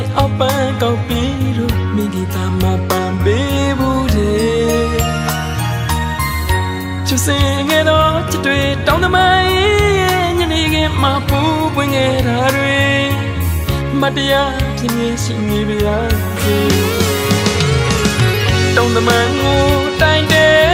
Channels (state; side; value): identical; both; correlation 1.00